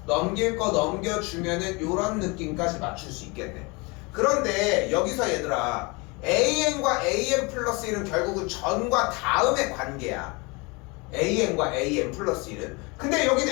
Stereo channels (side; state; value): right; quieter; 27.8 dB